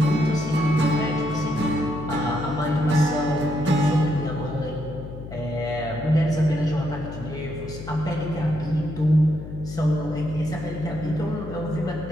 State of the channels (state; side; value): noise; left; hum, 11 dB below the sound